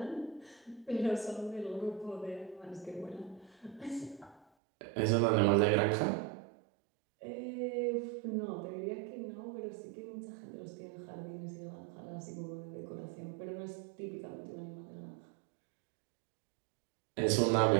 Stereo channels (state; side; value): drops out; left; at 4.5 s